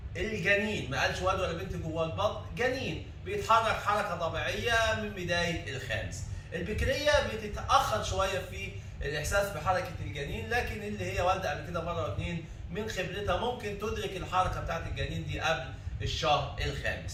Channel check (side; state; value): both; identical; correlation 1.00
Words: الجنين، ما قالش ولد ولا بنت جوه البطن، جنين بيتحرك حركه طبيعيه من بدايه الخامس. البكريه بتتاخر شويه في الاحساس بحركه الجنين، لكن اللي هي والده قبل كده مره واثنين من خبرتها ممكن تدرك الحركه بتاعت الجنين دي قبل الشهر